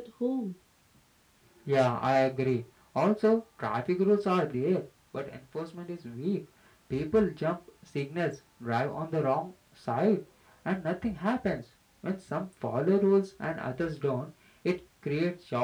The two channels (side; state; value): both; identical; correlation 1.00